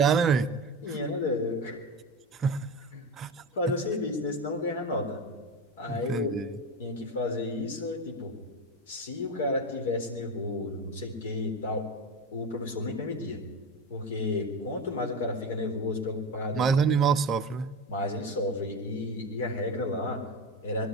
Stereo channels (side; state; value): both; normal; correlation 0.21